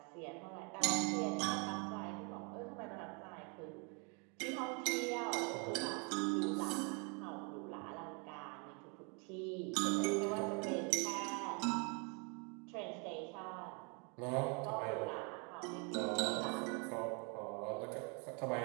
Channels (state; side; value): quieter; left; 34.3 dB